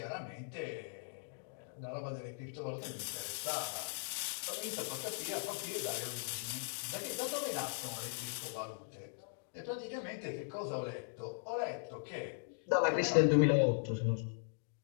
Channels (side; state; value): right; silent; digital silence